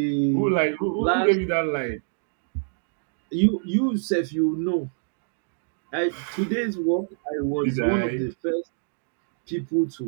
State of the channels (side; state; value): left; silent; digital silence